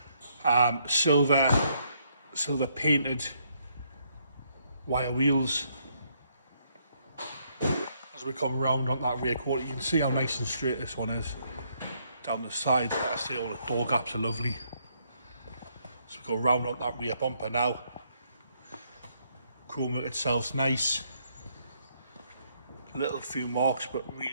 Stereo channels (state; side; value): inverted; both; correlation -0.72